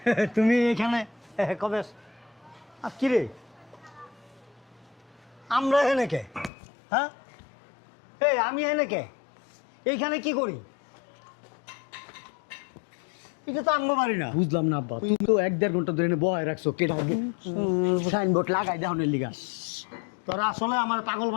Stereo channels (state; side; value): drops out; right; at 6.5 s